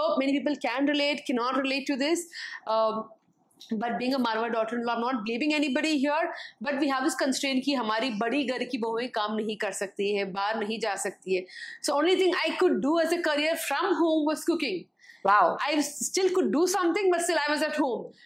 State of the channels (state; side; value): identical; both; correlation 1.00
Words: many people can relate, cannot relate to this. But being a Marwadi daughter-in-law, I'm not blaming anybody here, but we have this constraint कि हमारी बड़ी घर की बहुएं काम नहीं कर सकती है, बाहर नहीं जा सकती है. So only thing I could do as a career from home was cooking. Wow. I still could do something, but still I was at home.